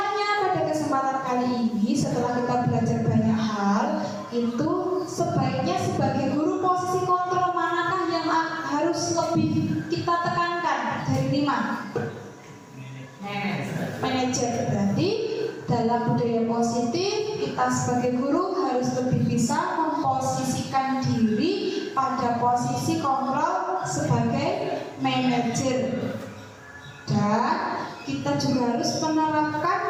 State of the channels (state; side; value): identical; both; correlation 1.00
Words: pada kesempatan kali ini setelah kita belajar banyak hal, itu sebaiknya sebagai guru posisi kontrol manakah yang harus lebih kita tekankan dari 5? Manajer. Berarti dalam budaya positif kita sebagai guru harus lebih bisa memposisikan diri pada posisi kontrol sebagai manajer. Dan kita juga harus